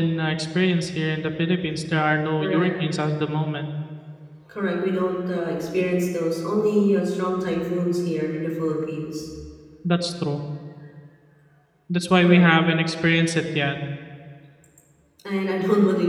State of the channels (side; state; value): both; identical; correlation 1.00